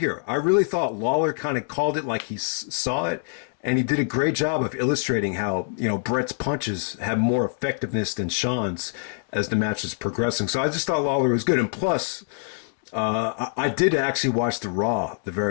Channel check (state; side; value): silent; right; digital silence